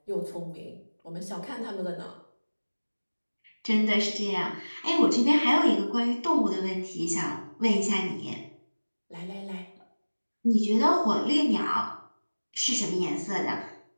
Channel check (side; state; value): both; inverted; correlation -1.00